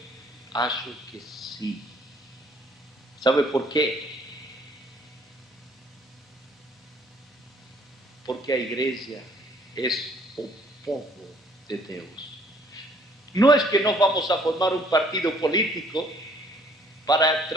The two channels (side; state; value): both; normal; correlation 0.61